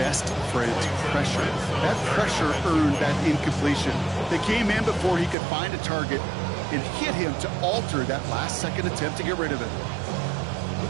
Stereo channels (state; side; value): drops out; left; at 5.4 s